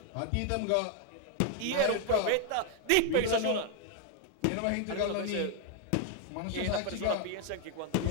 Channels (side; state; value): both; different; correlation 0.00